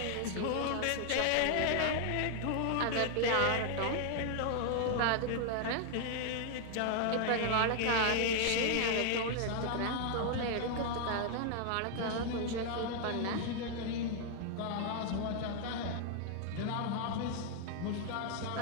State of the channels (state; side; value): different; both; correlation 0.00